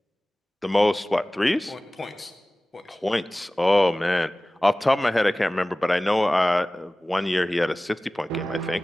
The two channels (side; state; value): both; normal; correlation 0.98